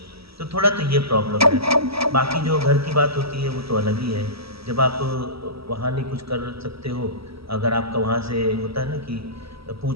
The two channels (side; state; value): left; late; 0.76 ms